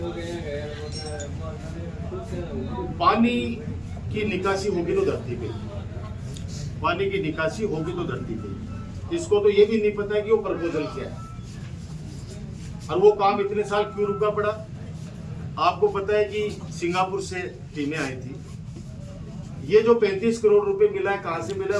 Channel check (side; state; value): both; identical; correlation 1.00